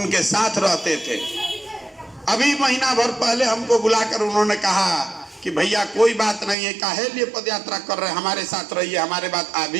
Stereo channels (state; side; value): drops out; left; at 6.6 s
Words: साथ रहते थे। अभी महीना भर पहले हमको बुलाकर उन्होंने कहा कि भैया कोई बात नहीं है, काहे लिए पद यात्रा कर रहे हैं, हमारे साथ रहिए, हमारे बात आदि